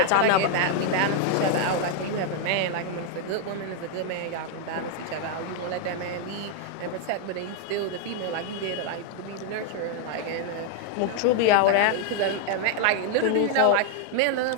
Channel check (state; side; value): different; both; correlation 0.00